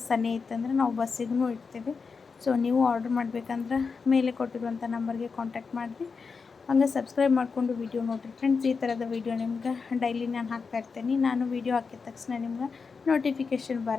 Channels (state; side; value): quieter; right; 5.1 dB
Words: ಸನೇ ಇತ್ತಂದ್ರೆ ನಾವು ಬಸ್ಸಿಗೂ ಇಡ್ತೀವಿ. ಸೊ ನೀವು ಆರ್ಡರ್ ಮಾಡಬೇಕಂದ್ರೆ ಮೇಲೆ ಕೊಟ್ಟಿರುವಂಥ ನಂಬರ್ಗೆ ಕಾಂಟ್ಯಾಕ್ಟ್ ಮಾಡಿರಿ. ಹಂಗೆ ಸಬ್ಸ್ಕ್ರೈಬ್ ಮಾಡಿಕೊಂಡು ವೀಡಿಯೋ ನೋಡಿರಿ ಫ್ರೆಂಡ್ಸ್. ಈ ಥರದ ವೀಡಿಯೋ ನಿಮ್ಗೆ ಡೈಲಿ ನಾನು ಹಾಕ್ತಾ ಇರ್ತೀನಿ. ನಾನು ವೀಡಿಯೋ ಹಾಕಿದ ತಕ್ಷಣ ನಿಮ್ಗೆ ನೋಟಿಫಿಕೇಷನ್